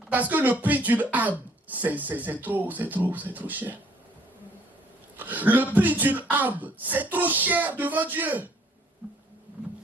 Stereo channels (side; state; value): both; normal; correlation 0.61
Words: parce que le prix d'une âme, c'est trop cher. Le prix d'une âme, c'est trop cher devant Dieu.